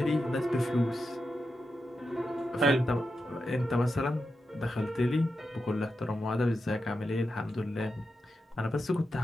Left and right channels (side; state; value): both; normal; correlation 0.88